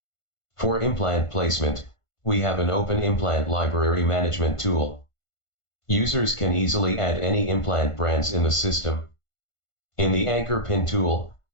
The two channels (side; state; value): right; late; 1.5 ms